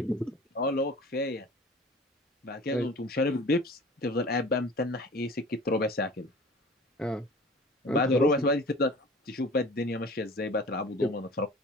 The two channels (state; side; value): normal; both; correlation 0.43